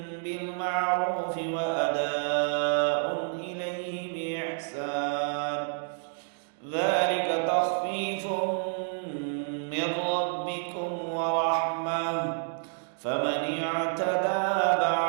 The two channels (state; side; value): silent; left; digital silence